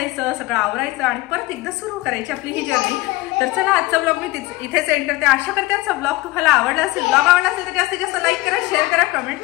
सगळं आवरायचं आणि परत एकदा सुरू करायची आपली ही जर्नी. तर चला आजचा ब्लॉग मी इथेच एंड करते. आशा करते आजचा ब्लॉग तुम्हाला आवडला असेल. ब्लॉग आवडला असेल तर जास्तीत जास्त लाईक करा, शेअर करा, कमेंट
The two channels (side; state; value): right; quieter; 19.8 dB